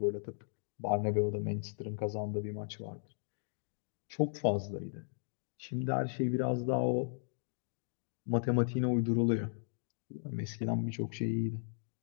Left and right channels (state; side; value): silent; right; digital silence